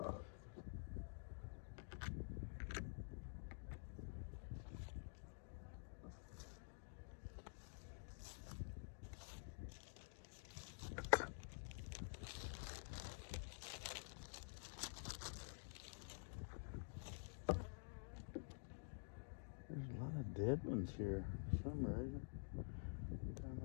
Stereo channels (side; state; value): right; silent; digital silence